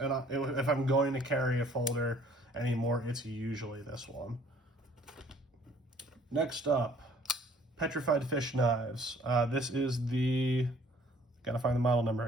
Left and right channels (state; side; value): normal; both; correlation 0.57